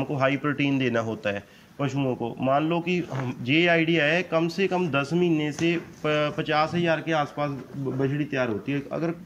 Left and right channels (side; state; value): both; identical; correlation 1.00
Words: हाई प्रोटीन देना होता है पशुओं को। मान लो कि ये आइडिया है, कम से कम 10 महीने से 50 हज़ार के आसपास बछड़ी तैयार होती है, अगर